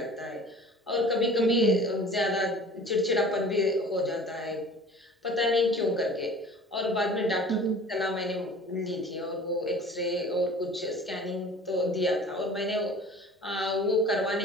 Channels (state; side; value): normal; both; correlation 0.45